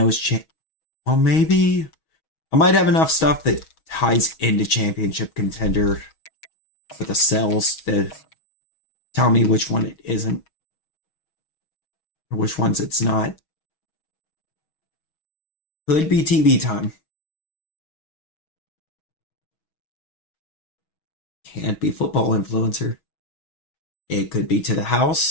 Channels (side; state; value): right; late; 6.3 ms